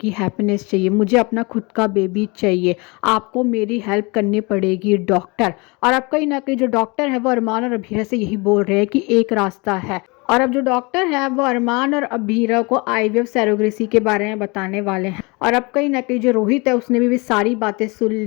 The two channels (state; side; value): quieter; right; 27.4 dB